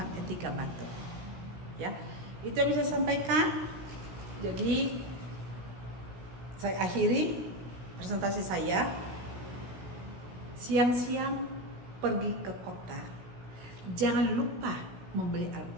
etika batuk. Ya, itu yang bisa saya sampaikan. Jadi saya akhiri presentasi saya. Siang-siang pergi ke kota, jangan lupa membeli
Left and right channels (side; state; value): left; late; 16 ms